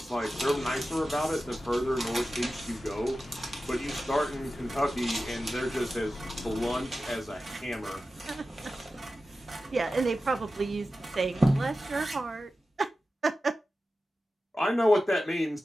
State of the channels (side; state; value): both; normal; correlation 0.93